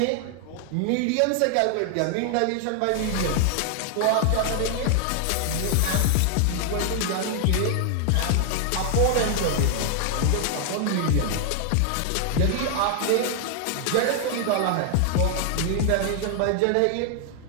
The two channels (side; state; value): both; different; correlation 0.00